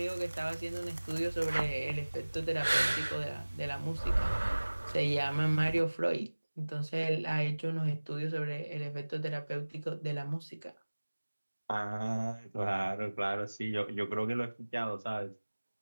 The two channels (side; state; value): both; inverted; correlation -1.00